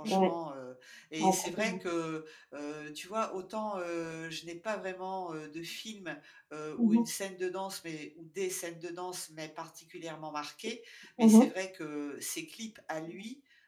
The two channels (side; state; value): both; identical; correlation 1.00